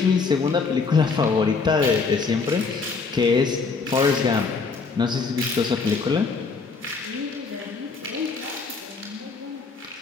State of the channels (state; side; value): quieter; right; 4.7 dB